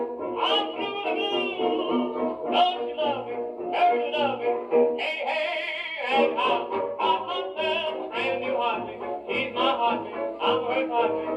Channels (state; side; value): identical; both; correlation 1.00